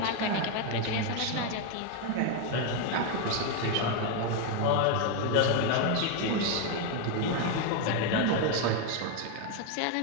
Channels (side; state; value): both; different; correlation 0.02